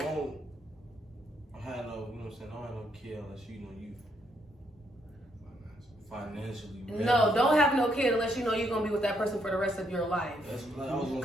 have no, you know what I'm saying? Don't have no kid unless you know you financially. No, don't have no kid unless you know you're gonna be with that person for the rest of your life. That's what I was gonna-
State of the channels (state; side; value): normal; both; correlation 0.74